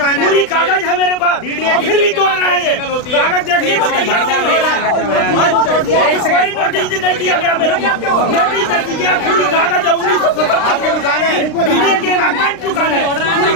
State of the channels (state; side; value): late; right; 36 ms